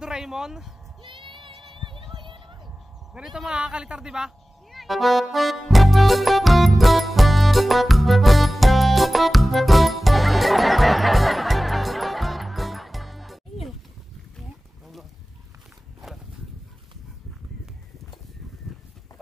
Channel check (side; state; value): both; normal; correlation 0.97